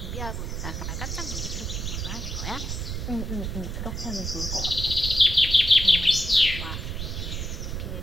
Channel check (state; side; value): noise; right; rumble, 4 dB below the sound